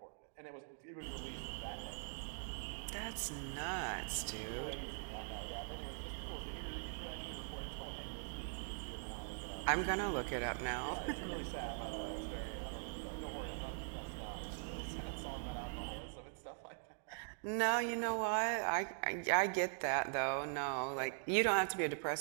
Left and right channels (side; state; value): left; silent; digital silence